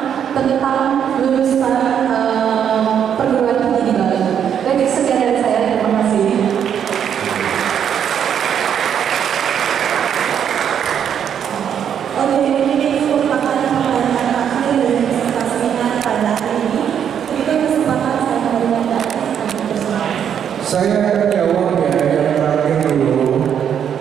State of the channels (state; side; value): quieter; left; 8.6 dB